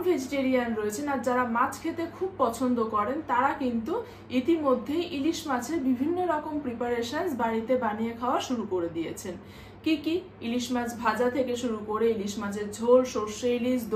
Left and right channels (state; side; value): identical; both; correlation 1.00